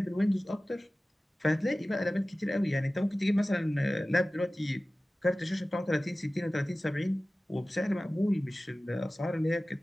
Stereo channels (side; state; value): both; normal; correlation 0.97